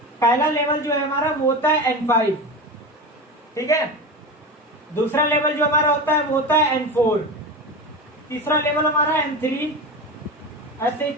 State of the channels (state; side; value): normal; both; correlation 0.24